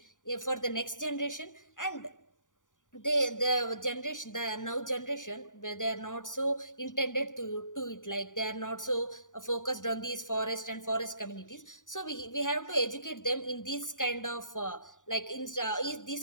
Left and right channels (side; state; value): right; late; 0.87 ms